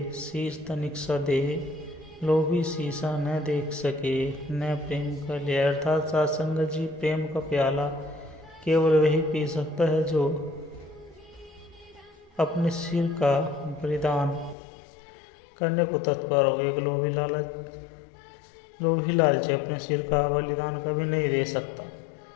शीश तनिक सा दे। लोभी शीशा न देख सके न प्रेम कर ले। अर्थात सासंगत जी, प्रेम का प्याला केवल वही पी सकता है जो अपने सिर का बलिदान करने को तत्पर हो। एक लोभी लालची अपने सिर का बलिदान कभी नहीं दे सकता,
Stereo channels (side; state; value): right; drops out; at 14.6 s